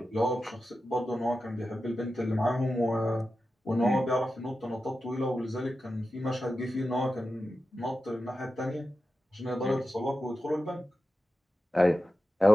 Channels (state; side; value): normal; both; correlation 0.92